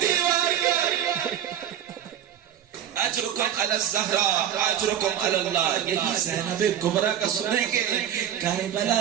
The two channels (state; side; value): quieter; left; 10.0 dB